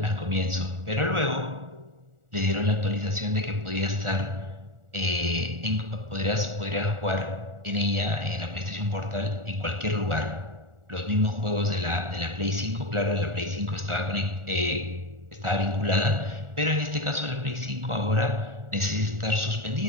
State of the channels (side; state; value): left; late; 1.4 ms